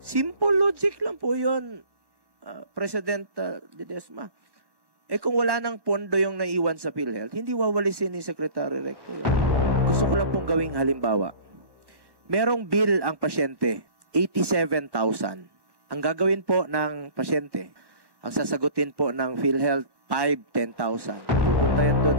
logic lang po yun, President Ledesma. Eh kung wala nang pondo yung naiwan sa PhilHealth, hindi wawalisin ni Secretary Recto yun. Gusto ko lang pong gawing halimbawa. Merong bill ang pasyente, 87,000. Ang gagawin po ng pasyente, ang sasagutin po ng PhilHealth, 10,000. Pupunta yan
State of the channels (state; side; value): late; left; 1.1 ms